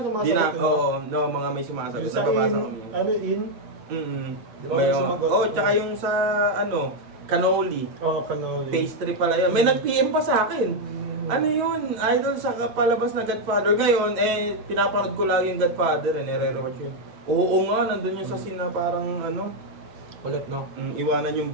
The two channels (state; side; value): late; left; 8.2 ms